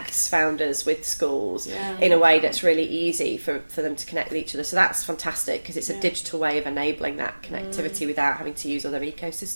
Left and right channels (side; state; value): both; inverted; correlation -1.00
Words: founders with schools in a way that's really easy for them to connect with each other. So that's fantastic because it's a digital way of enabling that connectivity without having to use other